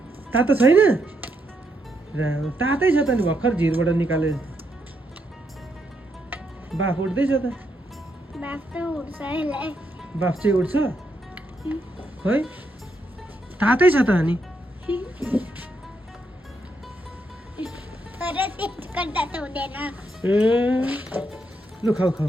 तातो छैन तातै छ त नि भर्खर झिरबाट निकाले बाफ उठ्दैछ त बाफ चाहिँ उठ्छ खै तातै छ त अनि ए लु खाऊ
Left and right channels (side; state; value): both; normal; correlation 0.79